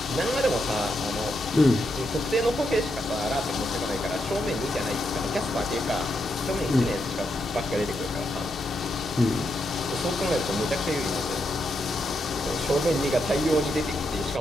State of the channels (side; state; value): both; normal; correlation 0.82